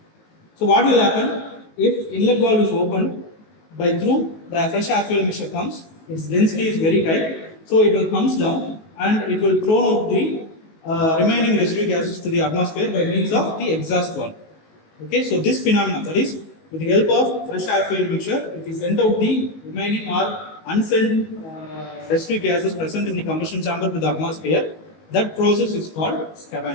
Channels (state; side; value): late; right; 19 ms